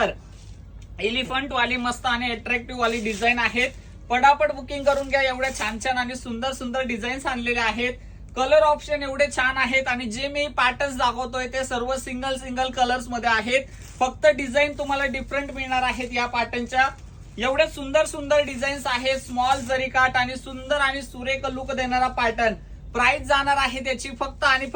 एलिफंट वाली मस्त आणि अट्रॅक्टिव्ह वाली डिझाईन आहेत. पटापट बुकिंग करून घ्या. एवढ्या छान छान आणि सुंदर सुंदर डिझाईन्स आणलेले आहेत. कलर ऑप्शन एवढे छान आहेत. आणि जे मी पॅटर्न्स दाखवतोय ते सर्व सिंगल सिंगल कलर्स मध्ये आहेत. फक्त डिझाईन तुम्हाला डिफरंट मिळणार आहेत या पॅटर्नच्या. एवढे सुंदर सुंदर डिझाईन्स आहेत. स्मॉल जरीकाठ आणि सुंदर आणि सुरेख लुक देणारा पॅटर्न. प्राइस जाणार आहे त्याची फक्त आणि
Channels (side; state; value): both; identical; correlation 1.00